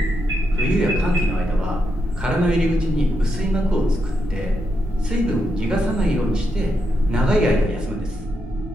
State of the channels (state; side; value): normal; both; correlation 0.83